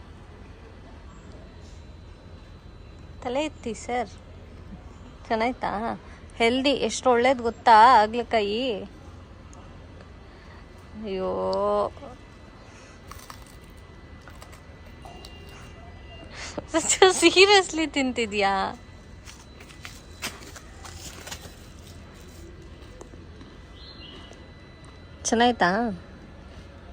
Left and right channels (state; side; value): identical; both; correlation 1.00